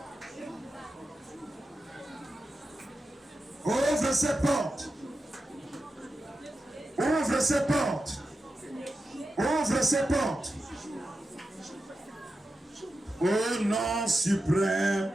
Ouvre ces portes. Ouvre ces portes. Ouvre ces portes. Au nom suprême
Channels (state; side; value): normal; both; correlation 0.91